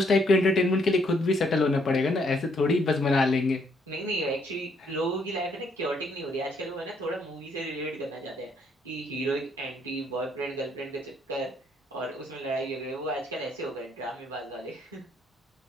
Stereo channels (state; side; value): normal; both; correlation 0.70